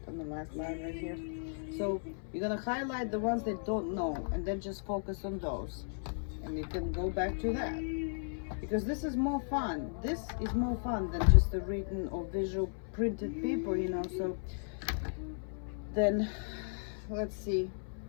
on the last line right here. So you're gonna highlight the ones they don't know, and then just focus on those, and you can go back to that, because this is more fun. This is more fun than just the written or visual printed paper, you know. So then let's see.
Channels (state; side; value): silent; right; 54 dB below the other